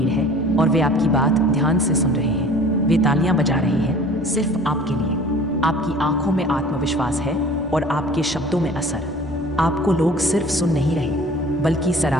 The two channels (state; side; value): normal; both; correlation 0.47